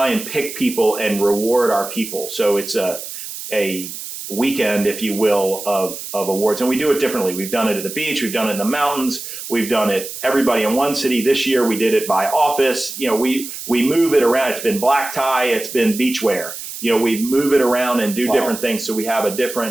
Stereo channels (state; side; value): noise; right; hiss, 10 dB below the sound